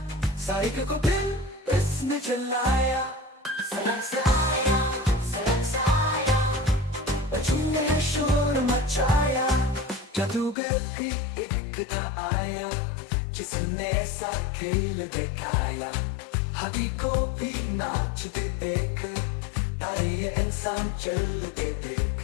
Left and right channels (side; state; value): right; drops out; at 10.6 s